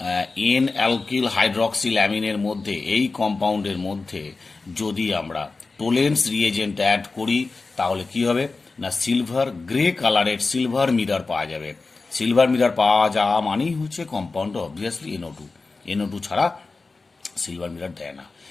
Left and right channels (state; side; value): quieter; right; 3.9 dB